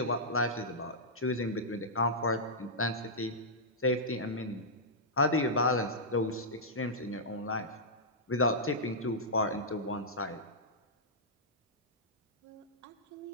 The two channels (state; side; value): normal; both; correlation -0.12